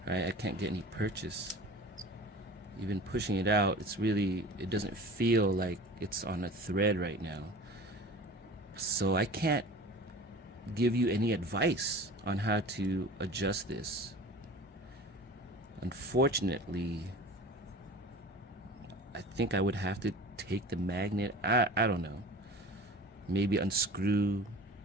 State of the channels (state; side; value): normal; both; correlation 0.39